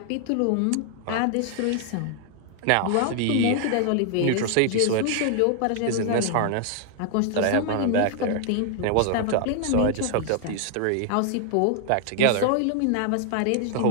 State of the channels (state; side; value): different; both; correlation 0.00